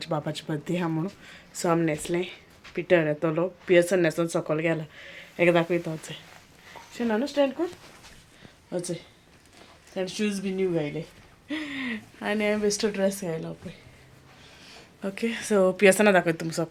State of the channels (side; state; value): both; identical; correlation 1.00